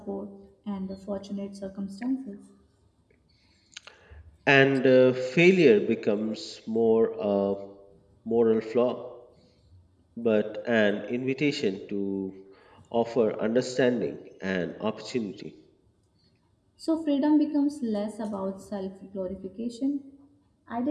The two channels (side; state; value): both; identical; correlation 1.00